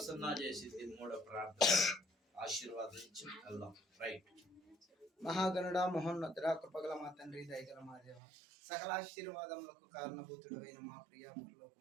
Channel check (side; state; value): left; drops out; at 8.2 s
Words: చేసింది మూడో ప్రార్థన. ఆశీర్వాదించి వెళ్దాం. రైట్. మహాగణుడ మహోన్నతుడ కృపగల మా తండ్రి దయగల మా దేవ సకల ఆశీర్వాదములకు కారణభూతుడైన మా ప్రియ